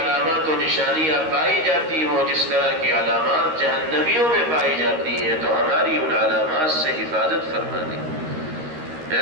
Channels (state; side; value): late; left; 13 ms